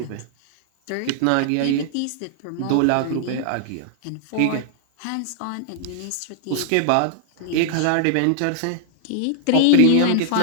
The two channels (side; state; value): both; different; correlation -0.01